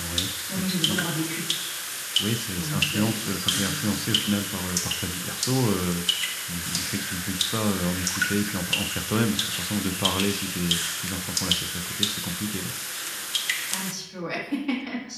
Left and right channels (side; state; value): both; identical; correlation 1.00